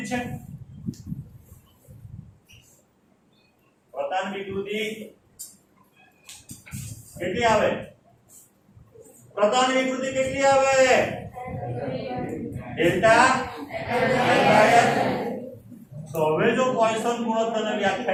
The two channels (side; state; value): both; identical; correlation 1.00